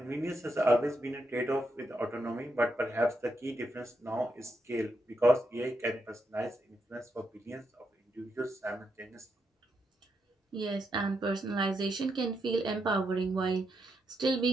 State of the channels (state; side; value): normal; both; correlation 0.82